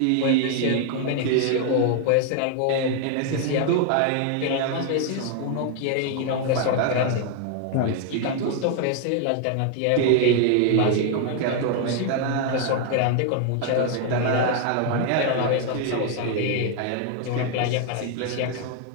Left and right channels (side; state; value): both; different; correlation 0.00